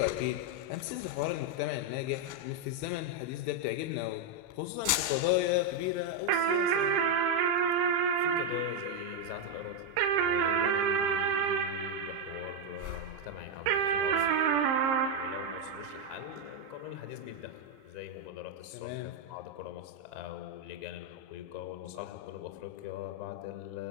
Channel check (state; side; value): late; left; 38 ms